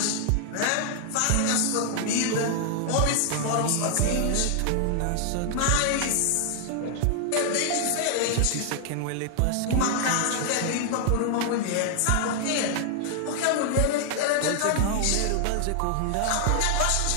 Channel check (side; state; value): both; different; correlation 0.00